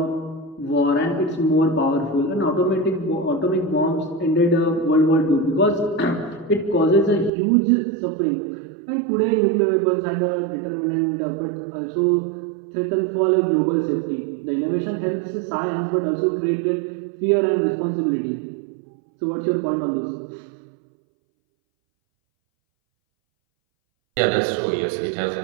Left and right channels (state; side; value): drops out; left; at 7.3 s